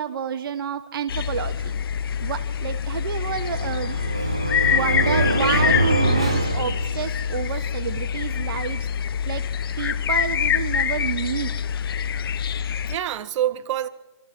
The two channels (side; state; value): both; inverted; correlation -0.40